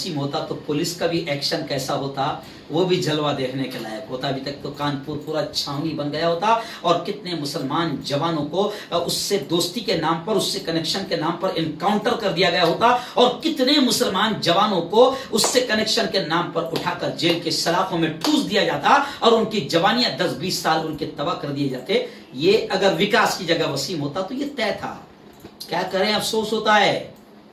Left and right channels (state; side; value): identical; both; correlation 1.00